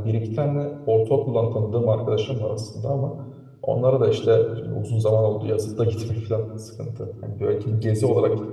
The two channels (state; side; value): identical; both; correlation 1.00